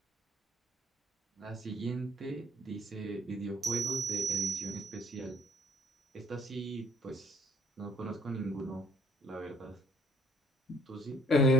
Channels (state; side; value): normal; both; correlation 0.60